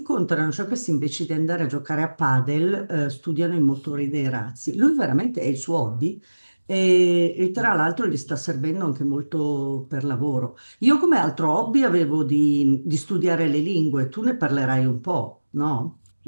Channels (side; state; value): both; inverted; correlation -1.00